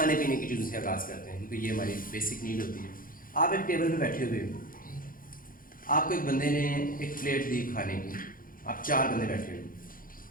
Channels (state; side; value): late; right; 0.41 ms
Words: पीने की चीज़ों से आगाज़ करते हैं क्योंकि ये हमारी बेसिक नीड होती है। आप एक टेबल पे बैठे हुए हो, आपको एक बंदे ने एक प्लेट दी खाने की, आप 4 बंदे बैठे हो।